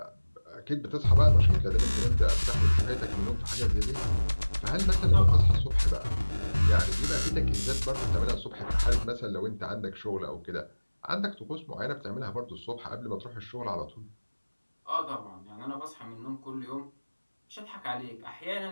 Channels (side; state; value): both; inverted; correlation -1.00